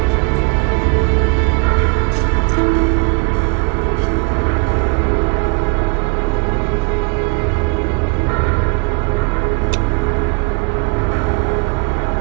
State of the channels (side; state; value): left; quieter; 33.5 dB